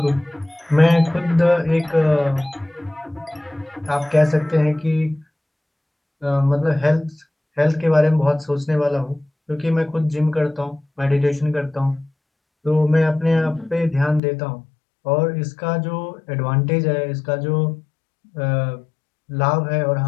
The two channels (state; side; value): drops out; right; at 14.2 s